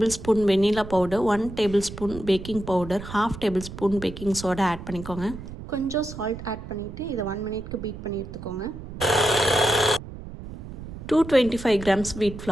vanilla powder, 1 tablespoon baking powder, half tablespoon baking soda add பண்ணிக்கோங்க. கொஞ்சம் சால்ட் ஆட் பண்ணிவிட்டு இதை 1 மினிட்க்கு பீட் பண்ணி எடுத்துக்கோங்க. 225 grams wheat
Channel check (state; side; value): noise; right; rumble, 12 dB below the sound